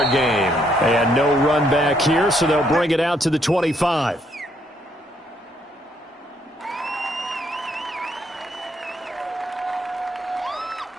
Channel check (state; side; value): normal; both; correlation 0.71